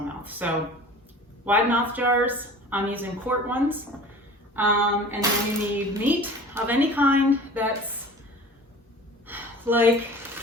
mouth. So wide mouth jars, I'm using quart ones. And then you need meat of any kind that's like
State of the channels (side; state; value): both; normal; correlation 0.42